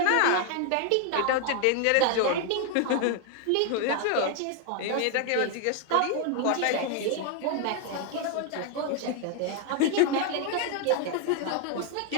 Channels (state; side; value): different; both; correlation 0.01